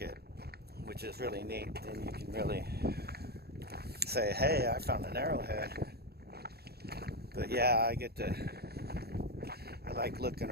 which is really neat. Then you can really say, hey, I found an arrowhead. But yeah, I like looking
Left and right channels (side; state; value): left; late; 0.46 ms